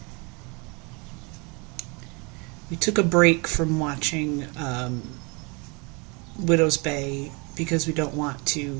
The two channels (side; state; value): left; quieter; 30.1 dB